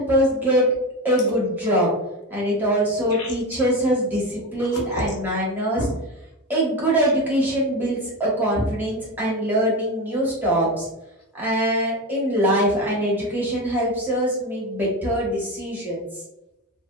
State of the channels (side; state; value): both; normal; correlation 0.20